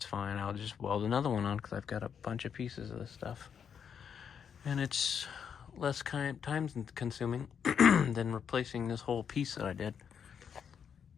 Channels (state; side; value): quieter; right; 7.5 dB